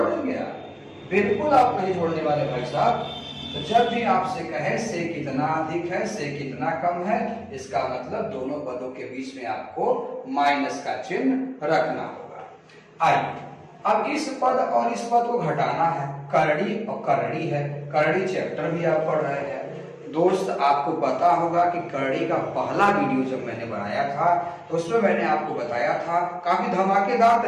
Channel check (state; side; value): identical; both; correlation 1.00